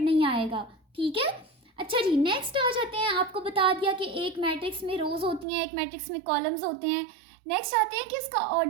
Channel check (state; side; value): drops out; left; at 5.5 s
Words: नहीं आएगा, ठीक है। अच्छा जी, नेक्स्ट आ जाते हैं। आपको बता दिया कि एक मैट्रिक्स में रोज होती हैं, एक मैट्रिक्स में कॉलम्स होते हैं। नेक्स्ट आते हैं कि उसका